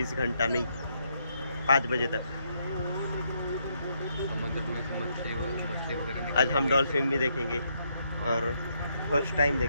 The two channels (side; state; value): both; inverted; correlation -0.76